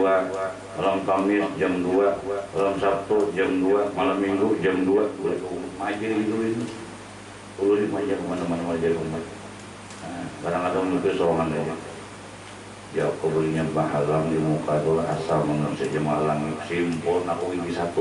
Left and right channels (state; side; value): identical; both; correlation 1.00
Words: malam Kamis jam 2 malam Sabtu jam 2 malam Minggu jam 2 boleh majer itu perlu dimajar kemana-mana majer umat kadang-kadang itu sorangan aja ya aku belinya bahalang di muka itu asal menurut saja malang simpul aku ini